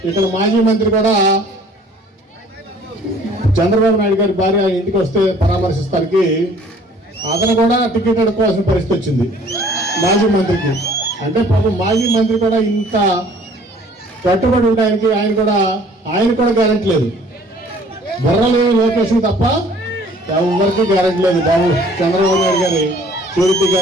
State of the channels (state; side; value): normal; both; correlation 0.54